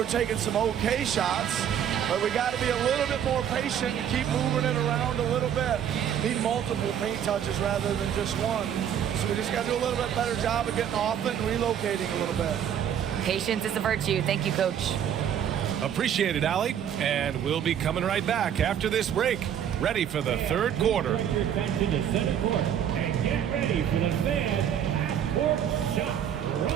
taking some okay shots, but we got to be a little bit more patient and keep moving it around a little bit. Need multiple paint touches rather than just one. So we just got to do a little bit better job of getting off it and relocating a little bit. Patience is a virtue. Thank you, Coach. Appreciate it, Allie. And we'll be coming right back after this break. Ready for the third quarter. Back to the center court and get ready for the Fed half-court shot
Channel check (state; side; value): quieter; left; 9.3 dB